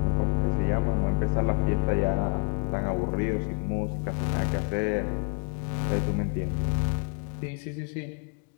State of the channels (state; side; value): quieter; right; 38.0 dB